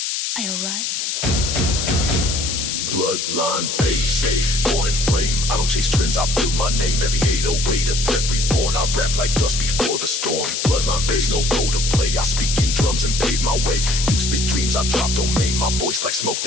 I arrive. Bloodline base, born in flame. I don't chase trends, I build my name. Every 808 a threat reborn. I rap like dust before the storm. Bloodline base, no role to play. I speak in drums and pave my way. You spit dreams, I drop domain. My voice like smoke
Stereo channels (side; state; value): left; noise; hiss, 2 dB below the sound